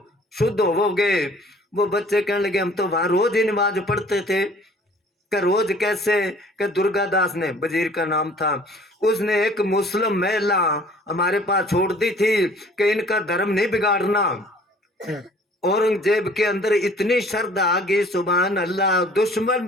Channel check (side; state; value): both; normal; correlation 0.53